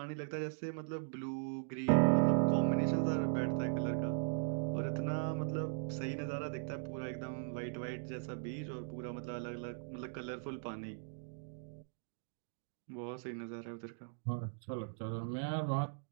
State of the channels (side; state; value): left; silent; digital silence